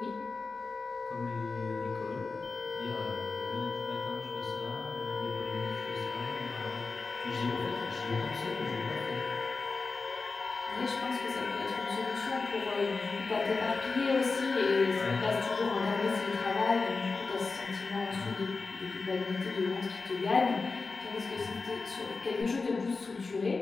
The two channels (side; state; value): right; quieter; 4.1 dB